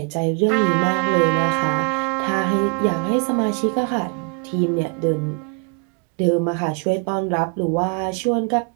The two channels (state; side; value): quieter; left; 31.7 dB